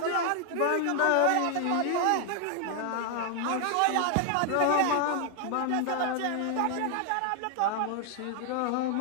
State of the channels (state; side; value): different; both; correlation 0.00